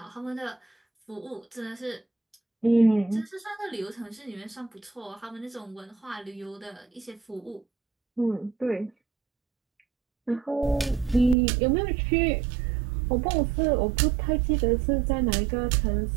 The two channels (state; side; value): drops out; left; at 11.4 s